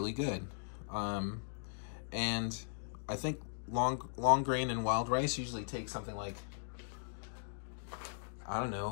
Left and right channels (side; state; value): right; silent; digital silence